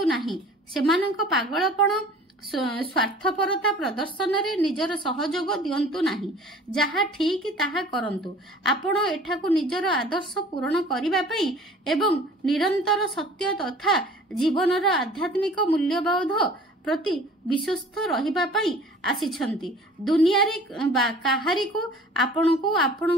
नाही। सेमानंक पागलपण स्वार्थपरता प्रदर्शन रे निजर सहयोग दियंतु नाही। जहा ठीक ताहा करंतु। आपण एठाकु निजर आदर्श पूर्ण करिबा पई एवं निरंतर सत्य तथा जीवनर आध्यात्मिक मूल्यबोध प्रति विश्वस्त रहिबा पई आसीछंती। दुनिया रे काहारी को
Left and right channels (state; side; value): normal; both; correlation 0.47